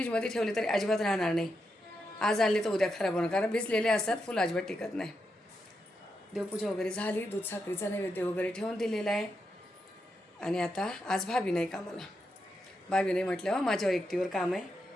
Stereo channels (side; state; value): both; normal; correlation 0.85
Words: ठेवले तरी अजिबात राहणार नाही. आज आणले तर उद्या खराब होणार कारण भिजलेले असतात. फुलं अजिबात टिकत नाही. देवपूजा वगैरे झाली. दूध साखरेचा नैवेद्य वगैरे ठेवून दिलेला आहे. आणि आता आज भाभी नाही कामाला. भाभी नाही म्हटल्यावर माझ्यावर एकटीवर काम आहे.